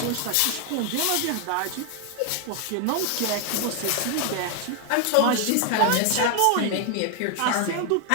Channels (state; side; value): different; both; correlation 0.01